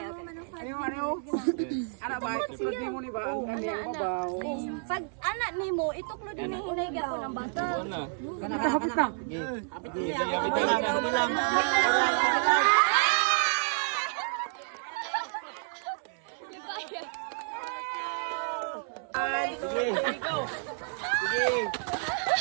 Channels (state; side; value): silent; left; 58 dB below the other